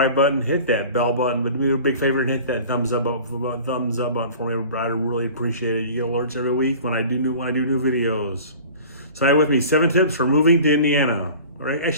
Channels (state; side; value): inverted; both; correlation -0.42